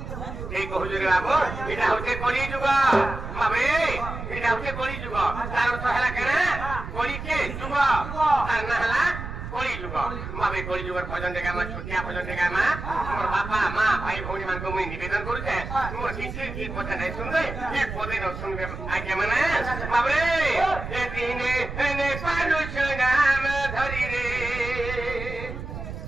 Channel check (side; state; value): right; noise; rumble, 8 dB below the sound